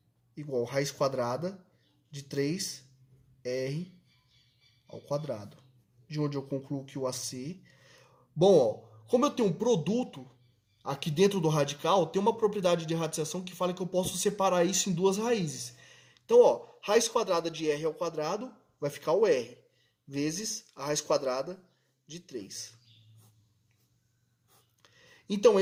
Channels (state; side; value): identical; both; correlation 1.00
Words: igual a raiz quadrada de 3R ao quadrado. De onde eu concluo que o AC... Bom, ó, como eu tenho um produto aqui dentro do radical, tem uma propriedade de radiação que fala que eu posso separar isso em duas raízes. Então, ó, raiz quadrada de R ao quadrado vai ficar o R, vezes a raiz quadrada de 3. Então,